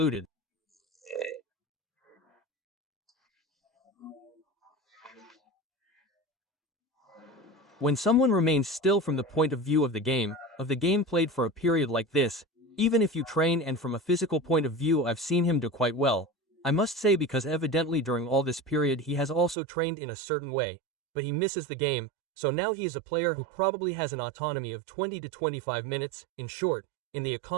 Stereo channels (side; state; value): left; drops out; at 19.6 s